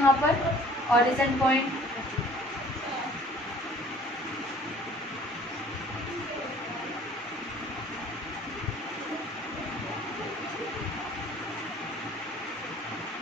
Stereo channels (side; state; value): both; normal; correlation 0.52